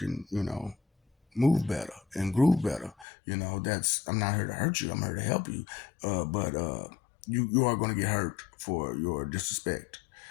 move better and groove better. That's, I'm not here to hurt you. I'm here to help you. But you are going to get hurt for your disrespect,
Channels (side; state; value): right; drops out; at 3.1 s